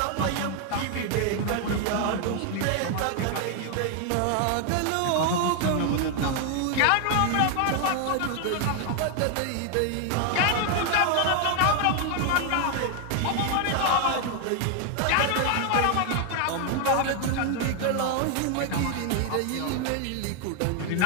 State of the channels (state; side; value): different; both; correlation 0.01